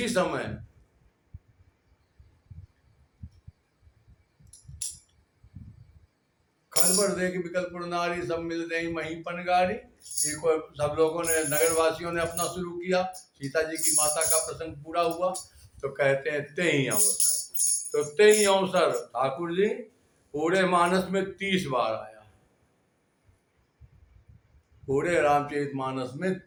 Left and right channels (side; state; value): both; identical; correlation 1.00